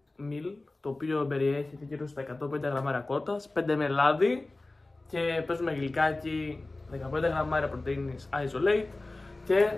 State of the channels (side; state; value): right; quieter; 3.0 dB